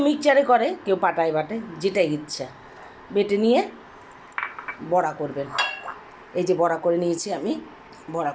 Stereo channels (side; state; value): both; identical; correlation 1.00